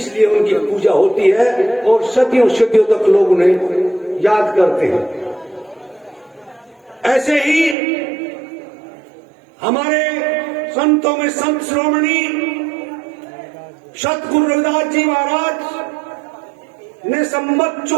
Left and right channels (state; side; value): drops out; left; at 7.8 s